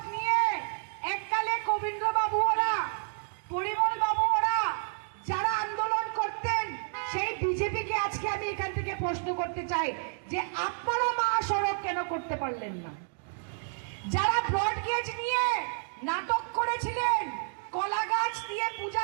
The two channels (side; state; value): left; silent; 58 dB below the other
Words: নিয়ে এককালে কবীন্দ্র বাবু ওরা, পরিমল বাবু ওরা যারা আন্দোলন করতেন, সেই বিজেপি প্রশ্ন করতে চাই যে আপনারা মহাসড়ক কেন করতে পারলেন না? যারা ব্রডগেজ নিয়ে নাটক করেছিলেন, কলা গাছ দিয়ে পূজা